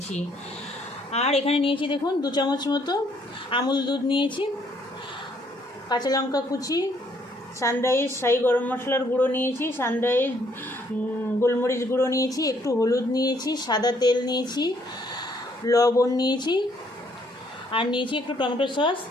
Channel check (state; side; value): normal; both; correlation 0.67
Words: আর এখানে নিয়েছি দেখুন 2 চামচ মতো আমুল দুধ নিয়েছি, কাঁচা লঙ্কা কুচি, সানরাইজ শাহি গরম মশলার গুঁড়ো নিয়েছি, সানরাইজ গোলমরিচ গুঁড়ো নিয়েছি, একটু হলুদ নিয়েছি, সাদা তেল নিয়েছি, লবণ নিয়েছি, আর নিয়েছি একটু টমেটো সস,